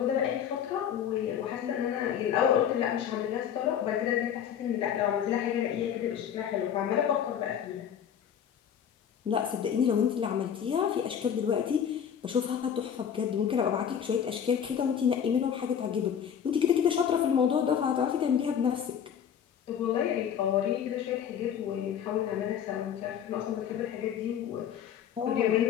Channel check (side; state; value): right; quieter; 8.6 dB